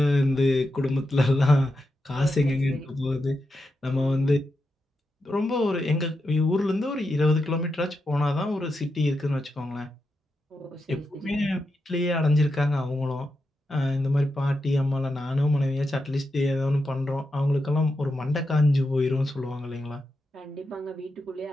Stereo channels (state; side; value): normal; both; correlation 0.87